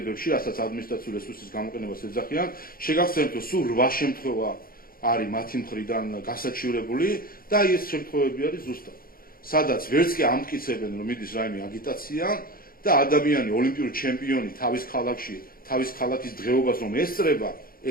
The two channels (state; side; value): late; right; 0.42 ms